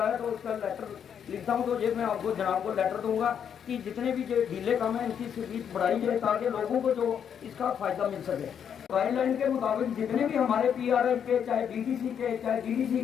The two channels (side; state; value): right; quieter; 8.2 dB